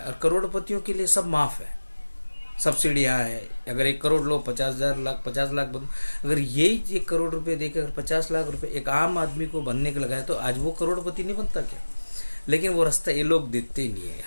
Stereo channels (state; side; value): inverted; both; correlation -1.00